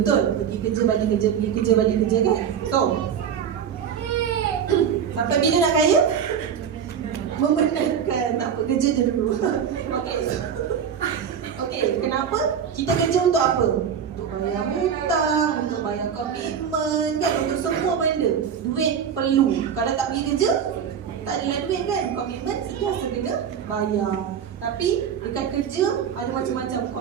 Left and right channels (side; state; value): left; quieter; 7.9 dB